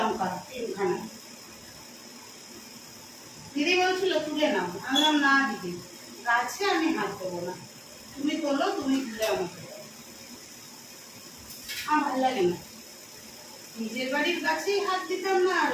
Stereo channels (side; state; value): both; identical; correlation 1.00